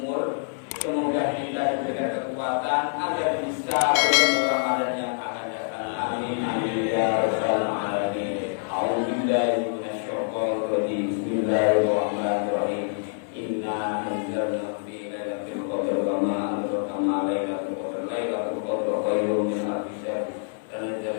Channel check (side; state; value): right; silent; digital silence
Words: semoga kita diberikan kekuatan agar bisa bertemu Ramadan yang akan datang. Amin. amin amin ya rabbal alamin. A'udzubillahi minasyaitonir rajim. Bismillahirrahmanirrahim. Inna anzalnahu fi lailatul qadr wa ma adraka ma lailatul qadr. Lailatul qadr khairun min alfi syahr.